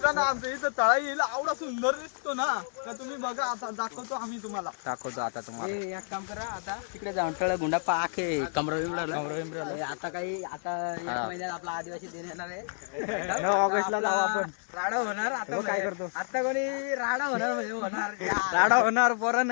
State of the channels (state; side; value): silent; right; digital silence